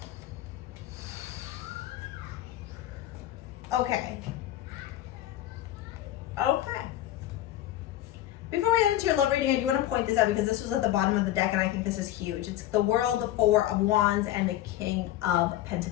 Okay. Okay. Before we get into your love reading, I do want to point this out because this was at the bottom of the deck, and I think this is huge. It's the World, the Four of Wands, and the King of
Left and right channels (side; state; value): right; quieter; 13.6 dB